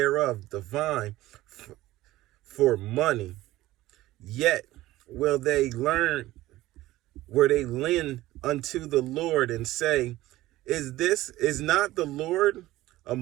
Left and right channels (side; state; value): left; quieter; 16.6 dB